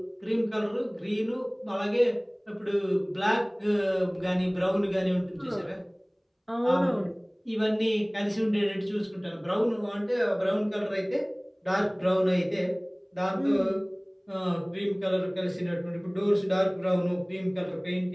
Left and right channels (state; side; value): identical; both; correlation 1.00